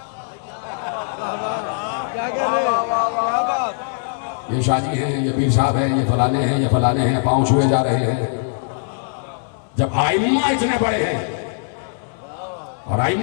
یہ شادی ہیں، یہ پیر صاحب ہیں، یہ فلانے ہیں، یہ فلانے ہیں، پاؤں چھوئے جا رہے ہیں. جب آئمہ اتنے بڑے ہیں اور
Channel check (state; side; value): silent; right; 65 dB below the other